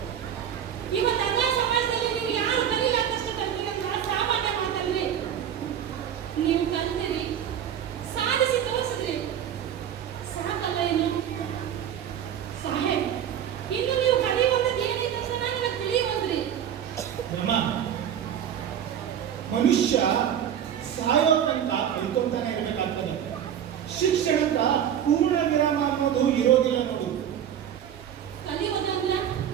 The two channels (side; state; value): left; quieter; 9.5 dB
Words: ಇವತ್ತು ಅದ ಸಮಾಜದಲ್ಲಿ ನೀವು ಯಾರು ಕಲಿಲಾರ್ದಷ್ಟು ಕಲ್ತಿರಿ ಅಂತ ಸಾಮಾನ್ಯ ಮಾತಲ್ರಿ. ನೀವು ಕಲ್ತಿರಿ, ಸಾಧಿಸಿ ತೋರಿಸಿದ್ರಿ, ಸಾಕಲ್ಲ ಏನು? ಸಾಹೇಬ್, ಇನ್ನು ನೀವು ಕಲಿಯುವಂಥದ್ದು ಏನಿದೆ ಅಂತ ನನಗೆ ತಿಳಿಯುವಂದ್ರಿ. ಅಮ್ಮ, ಮನುಷ್ಯ ಸಾಯೋ ತನಕ ಕಲ್ಕೊಂತಾನೆ ಇರಬೇಕಾಗ್ತದೆ. ಶಿಕ್ಷಣಕ್ಕ ಪೂರ್ಣ ವಿರಾಮ ಅನ್ನೋದು ಇರೋದಿಲ್ಲ ನೋಡು. ಕಲಿಯೋದಂದ್ರ